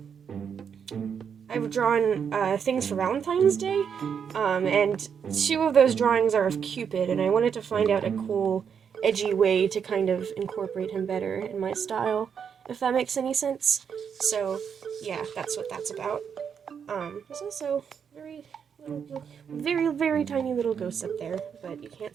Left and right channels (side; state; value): left; quieter; 7.2 dB